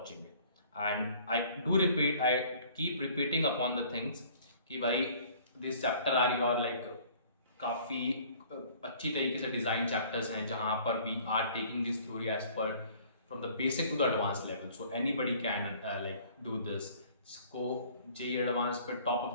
it. And I keep repeating upon the things कि भाई this chapter are your like काफ़ी अच्छी तरीके से डिज़ाइन चैप्टर्स हैं, जहाँ पर we are taking this theory as per from the basic to the advance level. So anybody can like do this. इसको जेईई एडवांस पे टॉप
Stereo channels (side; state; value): both; inverted; correlation -0.54